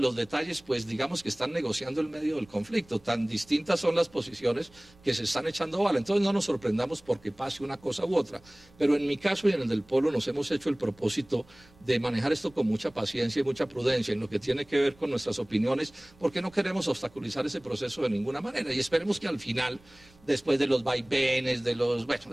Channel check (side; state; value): right; noise; rumble, 27 dB below the sound